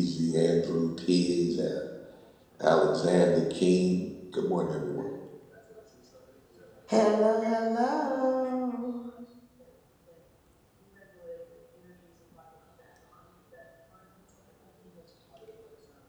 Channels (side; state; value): both; identical; correlation 1.00